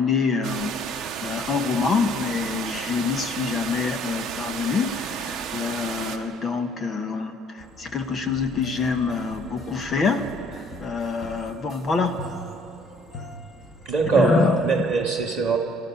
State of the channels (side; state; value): both; normal; correlation 0.60